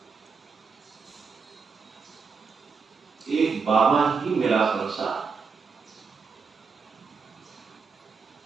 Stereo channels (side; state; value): left; quieter; 5.3 dB